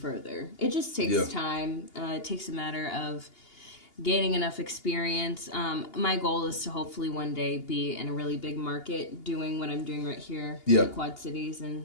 It just takes time. It takes a matter of gaining enough experience. My goal is to hopefully one day be in a really big market doing what I'm doing right here in the Quad Cities,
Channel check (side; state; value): right; late; 2.8 ms